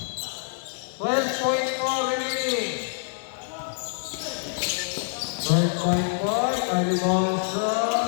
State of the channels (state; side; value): silent; right; 61 dB below the other